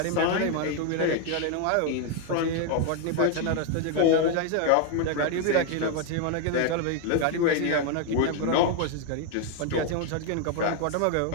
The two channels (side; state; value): both; different; correlation 0.00